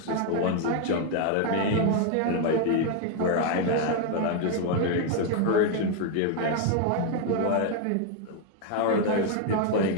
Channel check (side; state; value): both; different; correlation 0.01